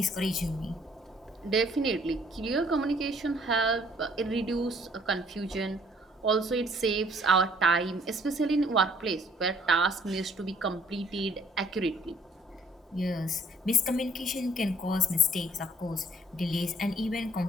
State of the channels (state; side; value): normal; both; correlation 0.60